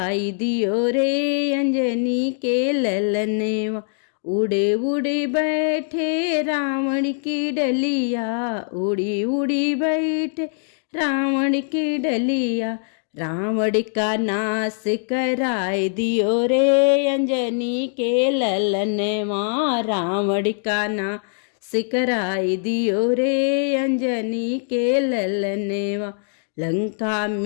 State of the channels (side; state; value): right; silent; digital silence